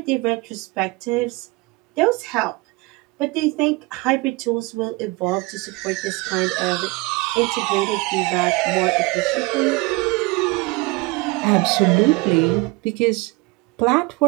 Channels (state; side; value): quieter; left; 24.7 dB